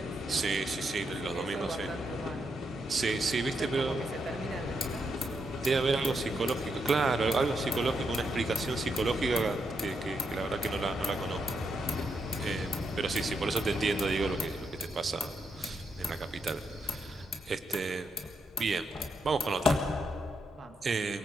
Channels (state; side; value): normal; both; correlation 0.81